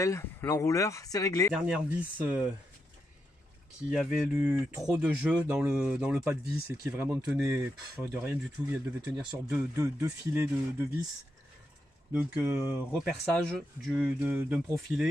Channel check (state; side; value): normal; both; correlation 0.84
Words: l'enrouleur c'est réglé. Dernière vis qui avait eu trop de jeu dans le pas de vis et qui vraiment tenait de rien du tout. Elle devait tenir sur deux filets de vis. Donc reperçage d'un